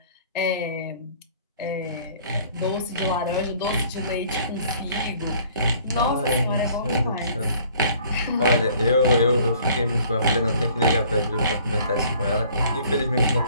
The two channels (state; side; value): inverted; both; correlation -0.56